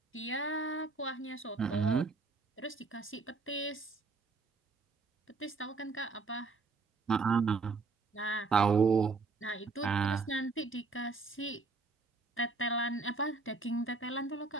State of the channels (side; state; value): left; quieter; 4.2 dB